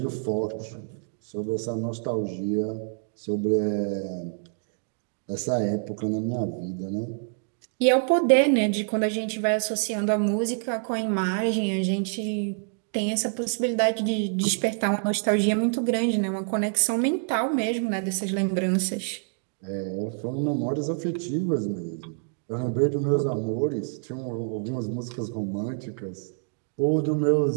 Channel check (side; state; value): left; silent; 60 dB below the other